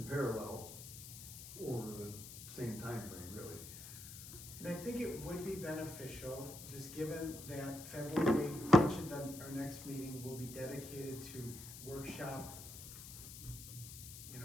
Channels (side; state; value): left; noise; hiss, 12 dB below the sound